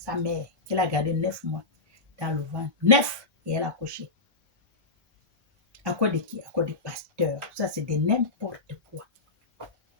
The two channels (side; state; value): right; quieter; 3.5 dB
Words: mère, qu'elle a gardé 9 mois dans le ventre. 9, et elle a accouché. À cause de qui? À cause des pasteurs. Ça, c'est de n'importe quoi.